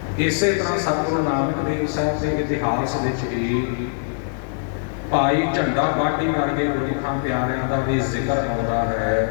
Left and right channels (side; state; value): right; silent; 64 dB below the other